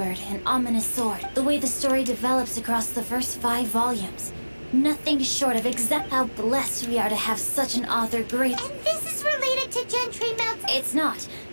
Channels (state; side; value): inverted; both; correlation -1.00